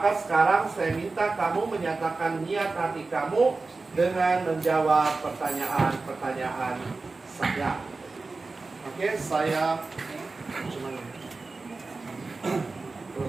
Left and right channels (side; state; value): left; quieter; 3.8 dB